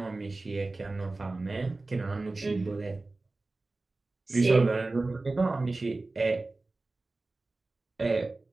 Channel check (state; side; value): quieter; left; 3.3 dB